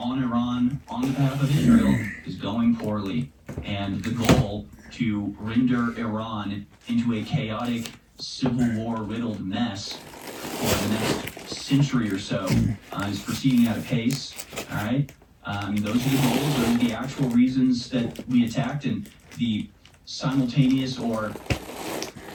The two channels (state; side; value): identical; both; correlation 1.00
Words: Iran on behalf of Israel is going poorly, and the goal to render Iran into a chaotic, civil war-riddled mess for the next century or so is proceeding at a pace, all right? Those are the goals, those are the actual reasons that we attacked, and the simultaneous or